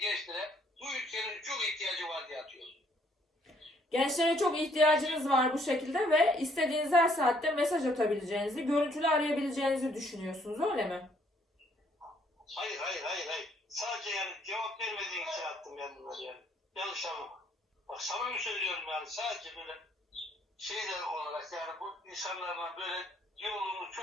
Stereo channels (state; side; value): normal; both; correlation 0.66